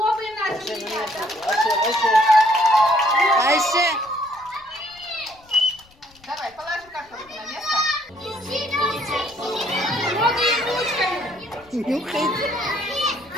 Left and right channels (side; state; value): left; noise; rumble, 29 dB below the sound